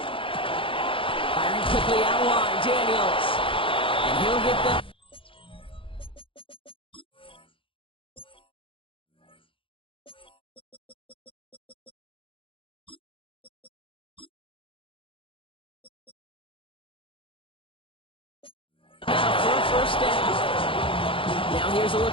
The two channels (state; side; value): late; right; 0.25 ms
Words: Firing quickly out wide, Daniels. And he'll get the... for a first down. Now here's a